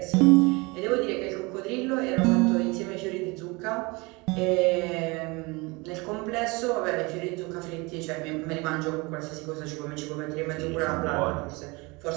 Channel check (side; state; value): left; quieter; 25.8 dB